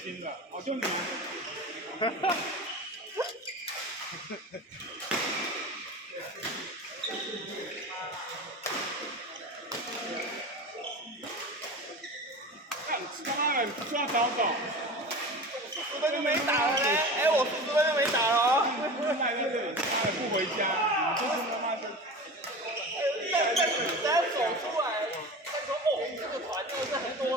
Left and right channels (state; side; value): normal; both; correlation 0.32